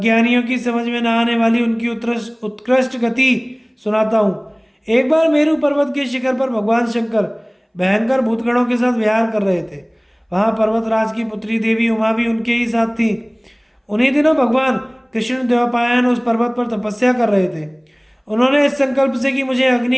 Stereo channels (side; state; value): both; identical; correlation 1.00